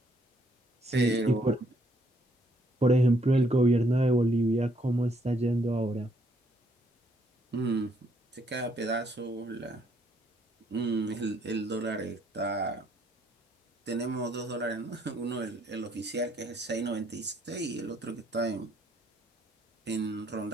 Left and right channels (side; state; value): both; normal; correlation 0.70